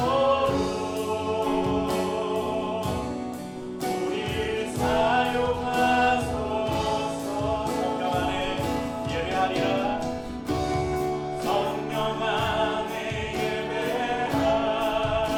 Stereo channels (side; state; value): both; identical; correlation 1.00